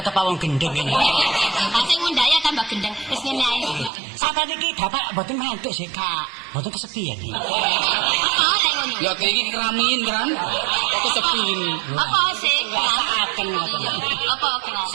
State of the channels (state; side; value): drops out; left; at 3.9 s